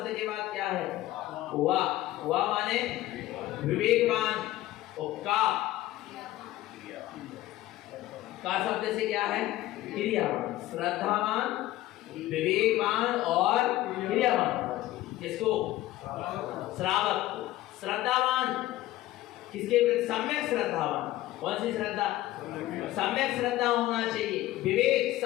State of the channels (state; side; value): quieter; right; 15.7 dB